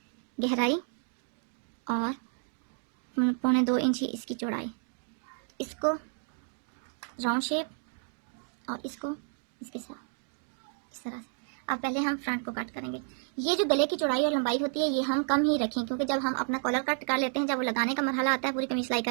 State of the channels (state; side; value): silent; left; 57 dB below the other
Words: गहराई और 2.25 इंच ही इसकी चौड़ाई। इसको राउंड शेप और इसको इसके साथ इस तरह से। अब पहले हम फ्रंट को कट करेंगे। ये जो गले की चौड़ाई और लंबाई होती है ये हम कम ही रखें, क्योंकि जब हम अपना कॉलर कट कर लेते हैं, जब वो लगाने का मरहला आता है पूरी कमीज सिलाई